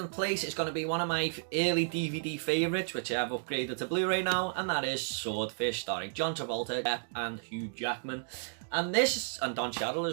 place is going to be one of my early DVD favourites, which I have upgraded to Blu-ray now, and that is Swordfish, starring John Travolta, Depp and Hugh Jackman. And this, and Don Cheadle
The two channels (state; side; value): silent; left; digital silence